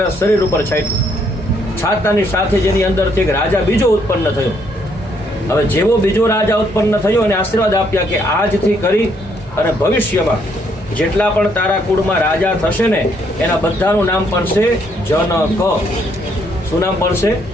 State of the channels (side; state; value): both; normal; correlation 0.70